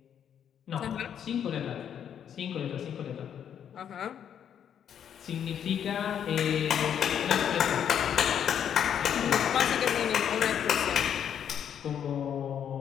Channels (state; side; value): quieter; right; 8.9 dB